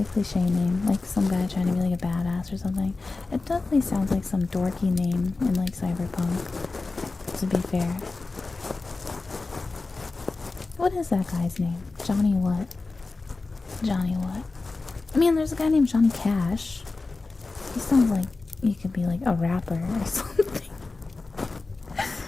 cliche name, like some guy trying to be like a badass or something. It definitely sounds like some dorky name in like Cyberpunk, to be fair. What is that guy's name? Johnny what? Johnny what? I mean, there's a guy named Johnny Cash. He sounds like he could be like a rapper or something.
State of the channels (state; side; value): quieter; right; 3.6 dB